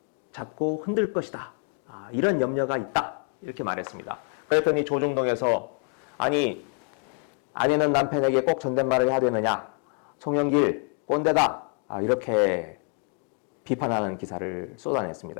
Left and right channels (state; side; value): quieter; right; 39.3 dB